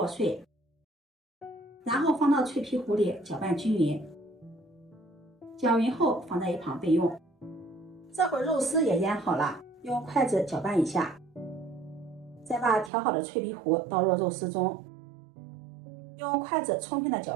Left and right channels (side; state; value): left; drops out; at 12.9 s